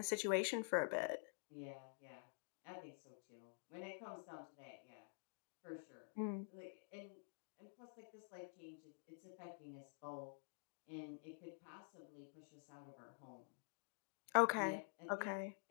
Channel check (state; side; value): silent; right; digital silence